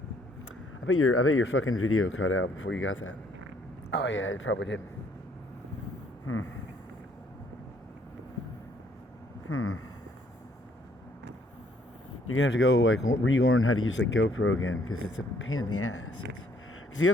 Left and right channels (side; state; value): both; normal; correlation 0.65